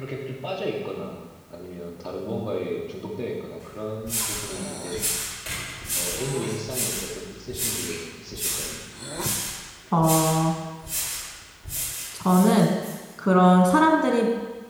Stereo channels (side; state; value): both; identical; correlation 1.00